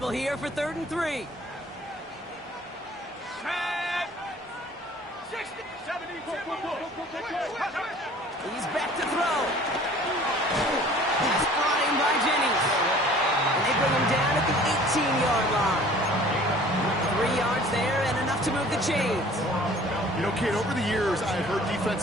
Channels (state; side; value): normal; both; correlation 0.50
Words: here for 3rd and 3. Set. 60, 70, He's back to throw. That's brought in by Jennings. And they bring him down at the 18-yard line. 3 yards there and enough to move the chains. You know, Kate, over the years, I've heard